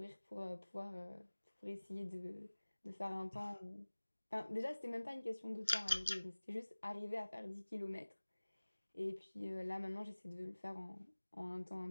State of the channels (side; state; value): both; inverted; correlation -1.00